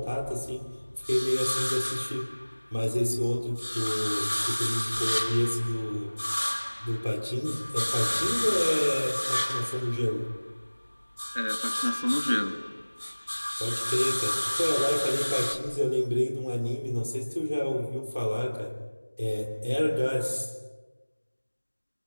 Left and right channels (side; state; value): both; inverted; correlation -1.00